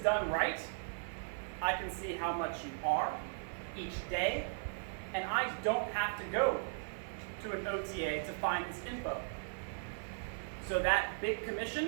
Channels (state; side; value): silent; left; 53 dB below the other